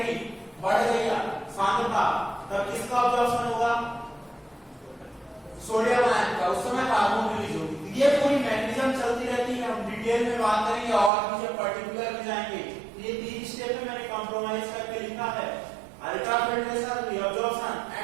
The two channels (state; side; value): drops out; left; at 11.1 s